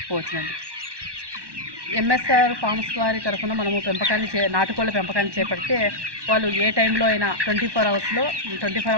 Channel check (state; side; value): late; left; 1.1 ms